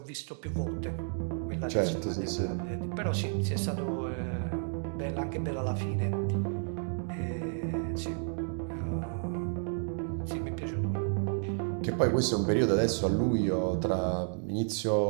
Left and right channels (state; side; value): silent; left; 57 dB below the other